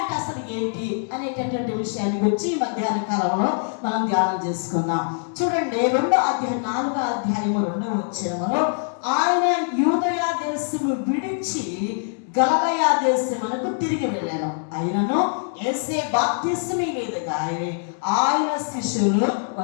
అసలు ఏంటి అనేటటువంటి విషయాన్ని గురించి ఈ మధ్యాహ్న కాలంలో మనం ధ్యానం చేసుకుందాం. చూడండి, 4వ అధ్యాయము 2వ వచనములో ఆయన యూదయ దేశము విడిచి గలిలయ దేశమునకు తిరిగి వెళ్ళాను. ఆయనను యేసే బాప్తిస్మము మీదుగా ఆయన శిష్యులు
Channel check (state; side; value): silent; right; 63 dB below the other